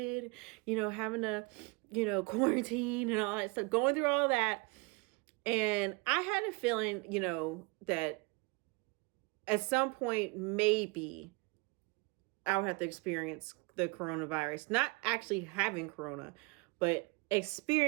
having to, quarantine and all that stuff, going through all that. And I had a feeling, that at some point, maybe I would have to experience the coronavirus, not actually having corona, but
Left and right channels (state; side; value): quieter; left; 28.1 dB